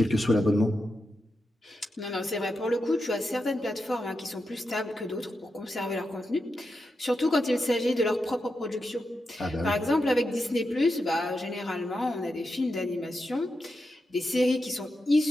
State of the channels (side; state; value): both; normal; correlation 0.87